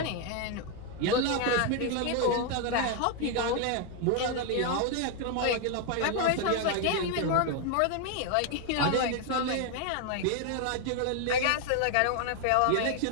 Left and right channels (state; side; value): different; both; correlation 0.01